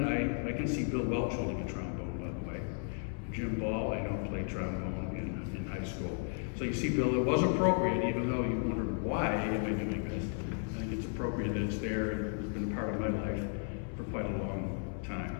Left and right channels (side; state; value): right; silent; 55 dB below the other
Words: I can see Bill Welch holding a trombone, by the way. Jim Ball, I know, played trombone in high school. So you see, Bill, it was appropriate, even though you wondered why am I doing this. I think it's appropriate that it's there and it's been a part of my life for quite a long time.